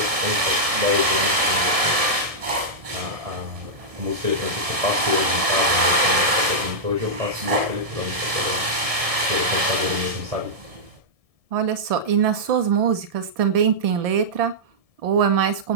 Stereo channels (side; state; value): left; late; 1.7 ms